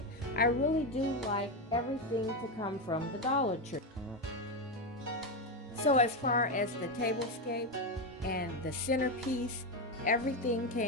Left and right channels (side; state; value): both; normal; correlation 0.11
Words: I really do like everything to come from the Dollar Tree. So as far as the tablescape and the centerpiece, everything